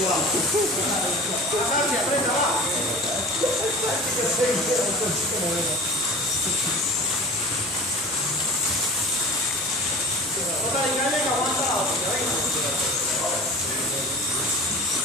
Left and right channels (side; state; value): both; normal; correlation 0.38